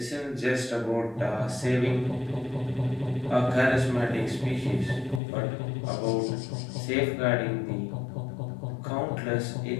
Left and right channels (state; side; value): drops out; right; at 5.2 s